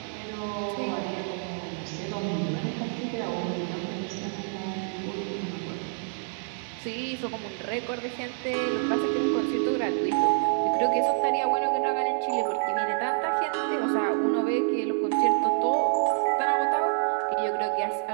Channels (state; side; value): silent; left; digital silence